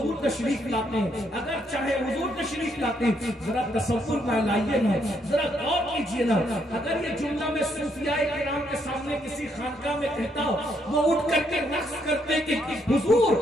तशरीफ लाते हैं। अगर चाहे हुजूर तशरीफ लाते हैं, जरा तसव्वुर में लाइए ना, जरा गौर कीजिए ना। अगर ये जुमला में सूफियाए किराम के सामने किसी खानका में कहता हो, वो उठ करके रक्स करते कि हुजूर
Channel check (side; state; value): both; normal; correlation 0.74